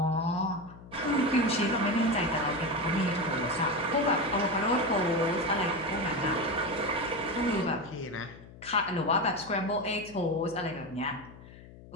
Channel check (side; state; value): left; noise; hum, 19 dB below the sound